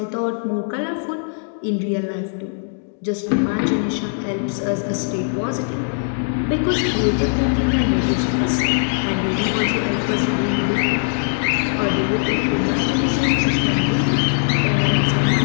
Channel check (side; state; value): right; silent; digital silence